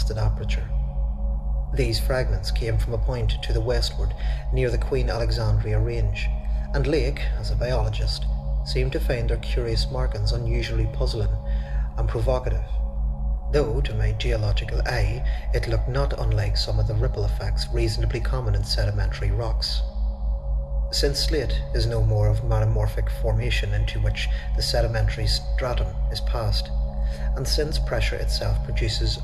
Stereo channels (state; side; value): identical; both; correlation 1.00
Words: aperture. These fragments came from a point to the westward near the Queen Alexandria Range, and Lake, as a biologist, seemed to find their curious markings unusually puzzling and provocative, though to my geological eye it looked not unlike some of the ripple effects reasonably common in sedimentary rocks. Since slate is no more of metamorphic formation into which the sedimentary stratum is passed, and since pressure itself produces